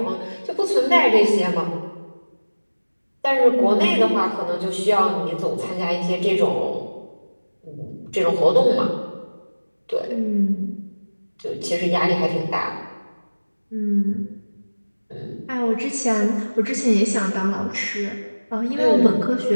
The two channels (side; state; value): both; inverted; correlation -1.00